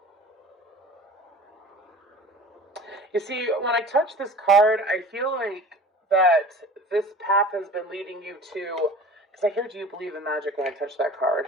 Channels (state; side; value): normal; both; correlation 0.41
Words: You see, when I touch this card, I feel like that this path has been leading you to, because I hear, do you believe in magic when I touch that card?